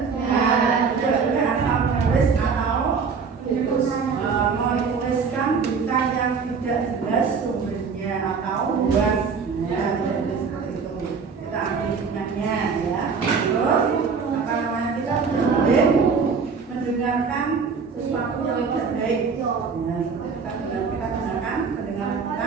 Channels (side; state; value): left; quieter; 5.5 dB